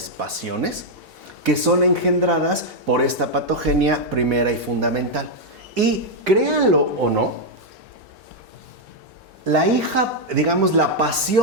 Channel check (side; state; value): both; normal; correlation -0.01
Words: pasiones, que son engendradas por esta patogenia primera y fundamental. Y créanlo o no, la